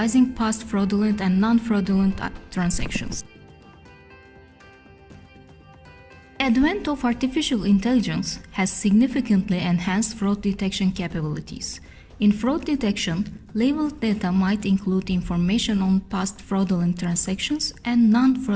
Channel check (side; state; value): both; identical; correlation 1.00